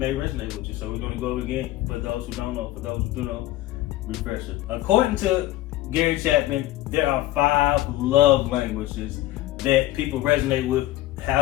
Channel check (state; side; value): quieter; right; 15.9 dB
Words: with you. So we're going to go over it again for those who don't know. For those who do know, refresher. According to Gary Chapman, there are 5 love languages that people resonate with, how